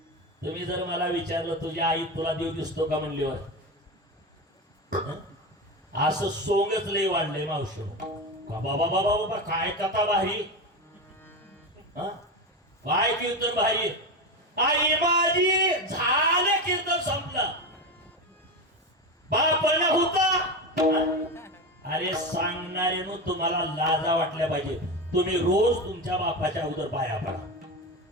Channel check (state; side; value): normal; both; correlation 0.19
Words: तुम्ही जर मला विचारलं तुझी आई तुला देव दिसतो का म्हणल्यावर असं सोंगच लय वाढलंय मावशी. बाबा बाबा बाबा काय कथा भारी, काय कीर्तन भारी. आई माझी झालं कीर्तन संपलं, बापन होता. अरे सांगणारे तुम्हाला लाजा वाटल्या पाहिजे. तुम्ही रोज तुमच्या बापाच्या अगोदर पाया